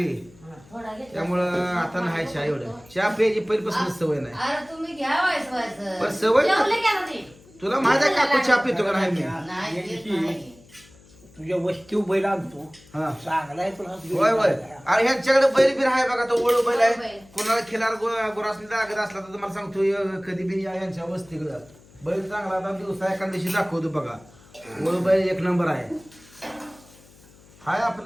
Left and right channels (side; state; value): left; noise; hum, 25 dB below the sound